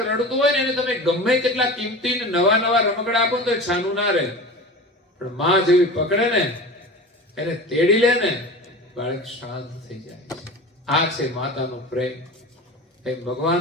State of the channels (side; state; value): both; normal; correlation 0.33